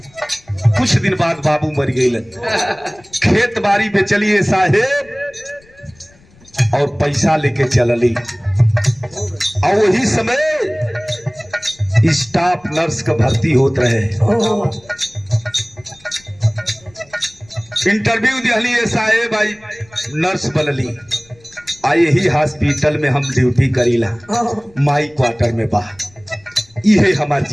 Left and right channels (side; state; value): left; noise; rumble, 29 dB below the sound